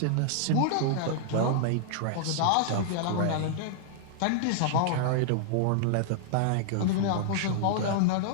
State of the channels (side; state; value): both; different; correlation -0.01